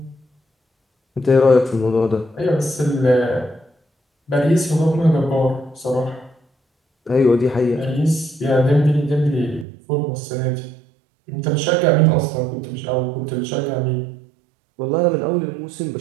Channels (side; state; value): left; drops out; at 9.7 s